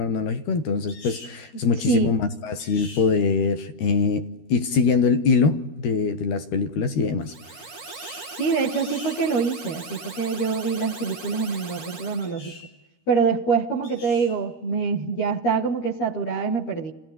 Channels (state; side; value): late; right; 13 ms